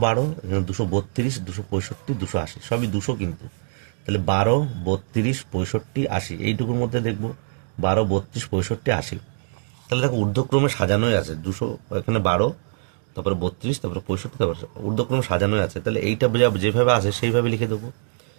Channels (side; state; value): left; silent; digital silence